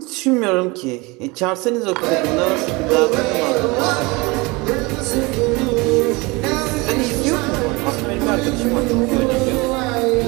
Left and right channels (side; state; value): left; quieter; 25.1 dB